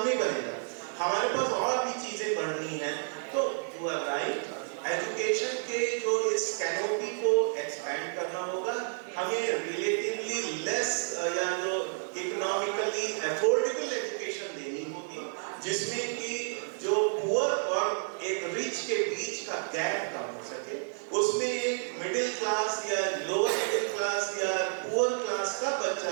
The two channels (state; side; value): silent; left; 57 dB below the other